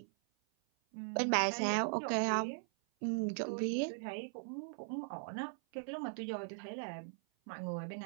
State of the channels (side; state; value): left; silent; 52 dB below the other